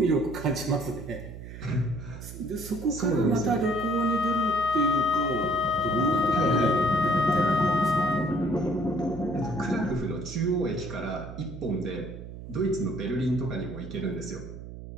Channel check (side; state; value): right; noise; hum, 12 dB below the sound